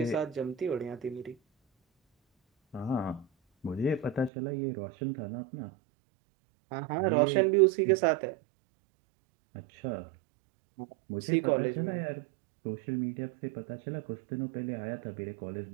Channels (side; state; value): left; drops out; at 4.3 s